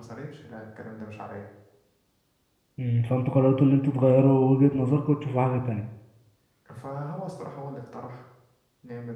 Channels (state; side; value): identical; both; correlation 1.00